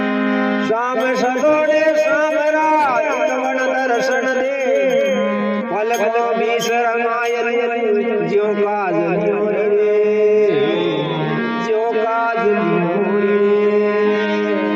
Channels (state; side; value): identical; both; correlation 1.00